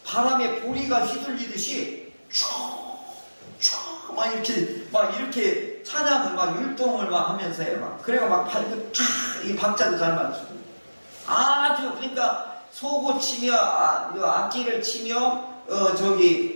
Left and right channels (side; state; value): both; inverted; correlation -1.00